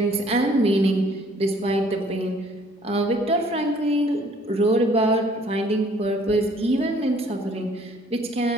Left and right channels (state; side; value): normal; both; correlation 0.58